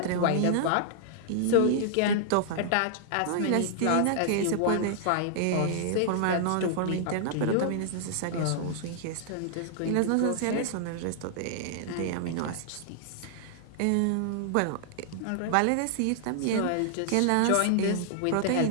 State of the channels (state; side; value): different; both; correlation -0.01